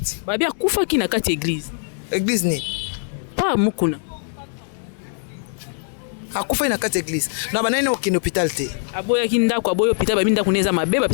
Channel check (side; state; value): right; silent; digital silence